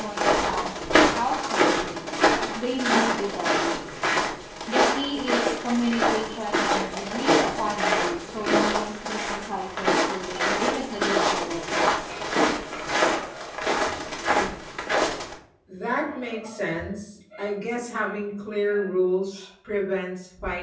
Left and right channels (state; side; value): identical; both; correlation 1.00